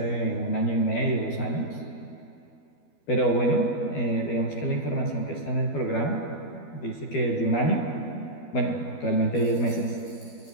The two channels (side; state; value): right; late; 12 ms